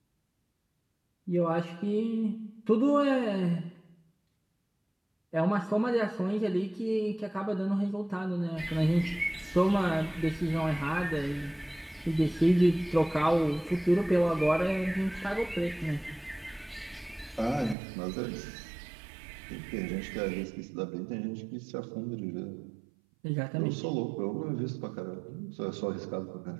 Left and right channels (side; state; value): left; drops out; at 17.8 s